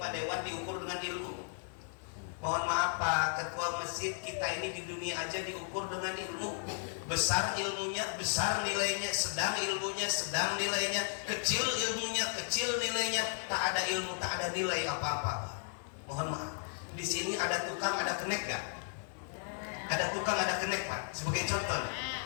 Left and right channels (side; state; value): right; silent; 54 dB below the other